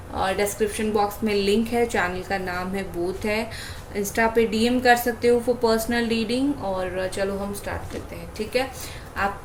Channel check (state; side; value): identical; both; correlation 1.00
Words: और डिस्क्रिप्शन बॉक्स में लिंक है, चैनल का नाम है बोथ है। इंस्टा पे डीएम कर सकते हो फॉर पर्सनल रीडिंग। और चलो हम स्टार्ट करते हैं, ठीक है।